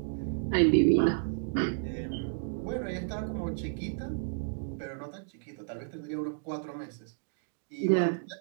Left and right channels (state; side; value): silent; left; digital silence